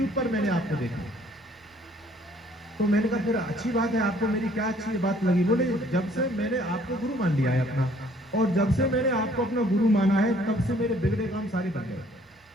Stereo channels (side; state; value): both; normal; correlation 0.60